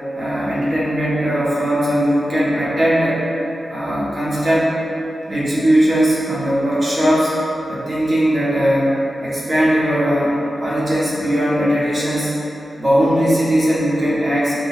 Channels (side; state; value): both; normal; correlation 0.92